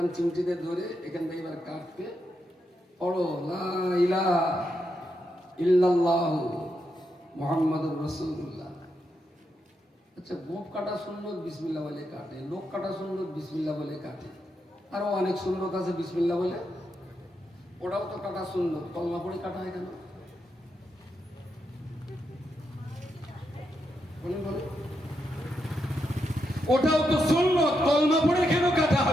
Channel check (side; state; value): both; normal; correlation 0.83